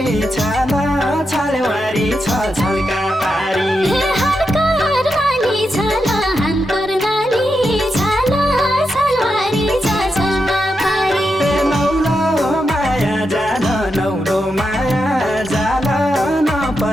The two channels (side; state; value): both; normal; correlation 0.86